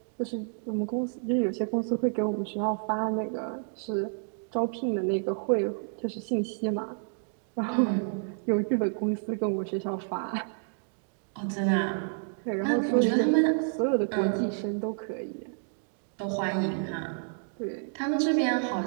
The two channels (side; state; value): left; silent; digital silence